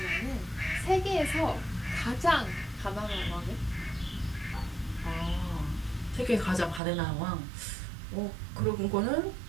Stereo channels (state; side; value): drops out; left; at 6.8 s